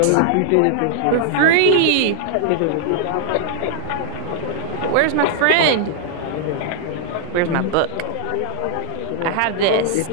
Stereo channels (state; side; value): different; both; correlation -0.01